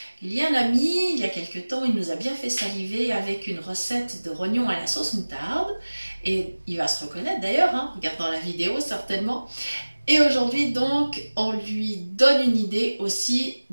Il y a un ami, il y a quelques temps, il nous a bien fait saliver avec une recette de rognons à la sauce moutarde. Et il va se reconnaître d'ailleurs, en regardant la vidéo certainement. Et aujourd'hui donc, on lui donne une idée aussi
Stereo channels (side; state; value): both; inverted; correlation -1.00